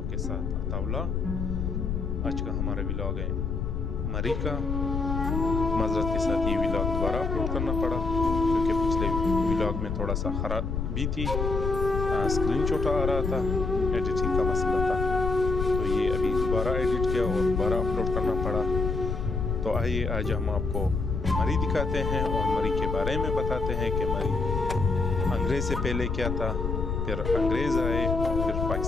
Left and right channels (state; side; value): noise; left; rumble, 2 dB below the sound